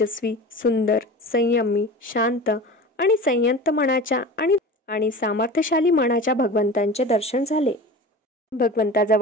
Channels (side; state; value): both; normal; correlation 0.35